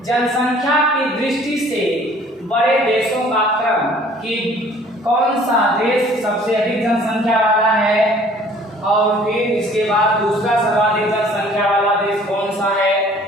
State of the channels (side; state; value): both; normal; correlation 0.54